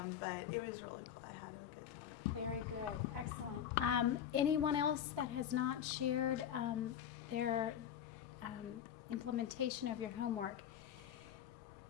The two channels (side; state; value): right; quieter; 9.5 dB